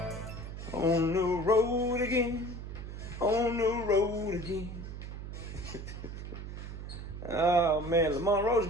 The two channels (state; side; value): noise; right; hum, 9 dB below the sound